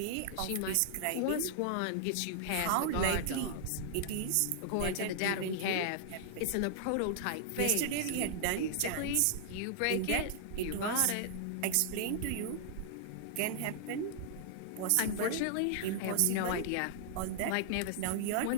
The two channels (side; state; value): both; different; correlation -0.01